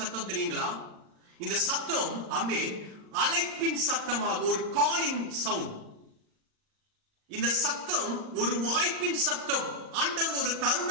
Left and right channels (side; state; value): left; late; 39 ms